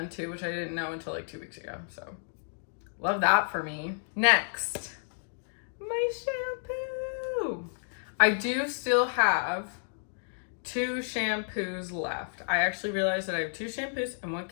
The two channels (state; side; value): silent; right; digital silence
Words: too, which I didn't know until like 2 weeks ago, so love that for me. Next, my shampoo. I do still have 2 shampoos left. I actually realized that I have 2 shampoos and 1